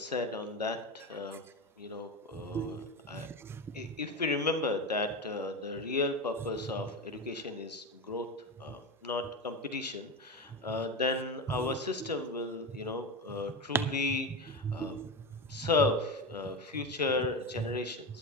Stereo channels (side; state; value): both; normal; correlation 0.20